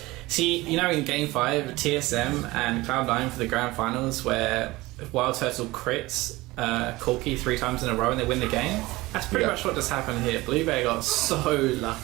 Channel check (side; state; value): left; quieter; 20.1 dB